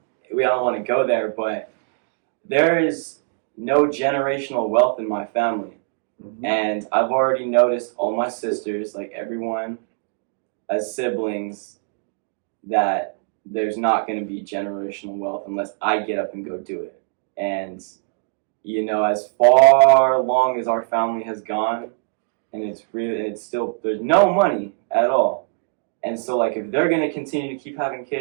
don't want to go there, but there is no generational wealth in my family. Mhm. And I've already noticed all my sisters, like everyone as siblings, that there's not going to be generational wealth unless I get up and go do it. And, you know, as far along as our family has gone, and it's still, there's no money at all. And so, like, if they're going to continue to keep having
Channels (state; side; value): silent; left; 64 dB below the other